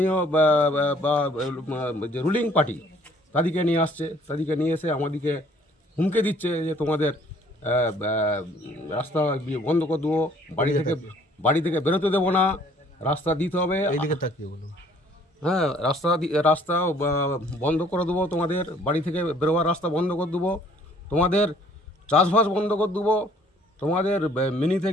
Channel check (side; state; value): both; normal; correlation 0.59